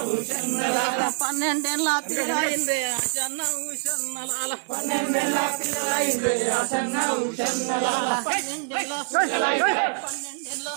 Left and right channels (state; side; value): silent; left; 62 dB below the other